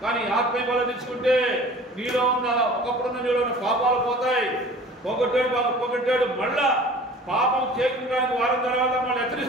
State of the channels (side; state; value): both; normal; correlation 0.45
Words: కానీ ఆత్మీయ బలం తెచ్చుకుంటే నీలో ఉన్న ఒకప్పుడున్న నీలో ఉన్న పాపాలు పోతాయి. పొగట్టాడు మళ్ళా పాపం చేయడానికి వారం తర్వాత మళ్ళీ